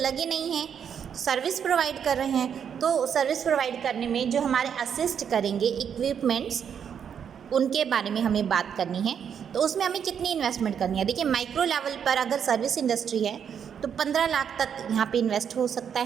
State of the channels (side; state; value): left; quieter; 7.9 dB